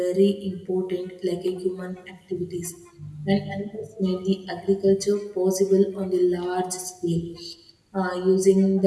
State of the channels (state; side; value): identical; both; correlation 1.00